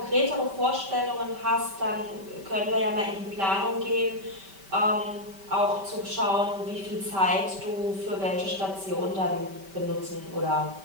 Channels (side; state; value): left; late; 5.2 ms